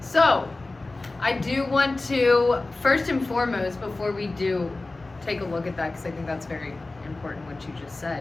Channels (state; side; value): quieter; right; 3.2 dB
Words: So, I do want to, first and foremost, before we do take a look at that, because I think that's very important what you just